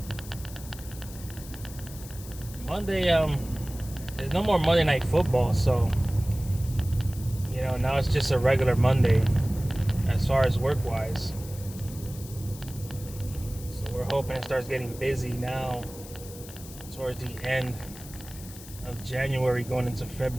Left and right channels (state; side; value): noise; left; hiss, 16 dB below the sound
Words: Monday, there's no more Monday Night Football, so you know, now it's just a regular Monday as far as work-wise. So we're hoping it starts getting busy now towards the end of January going into